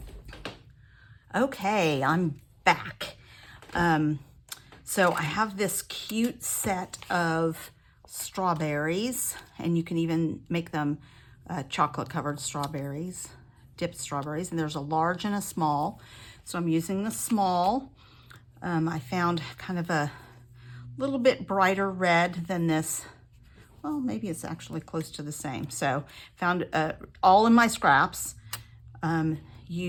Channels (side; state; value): both; identical; correlation 1.00